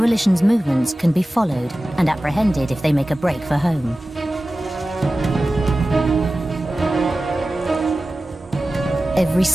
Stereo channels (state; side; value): normal; both; correlation 0.95